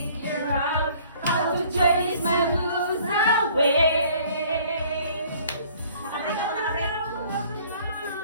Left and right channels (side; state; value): both; inverted; correlation -0.55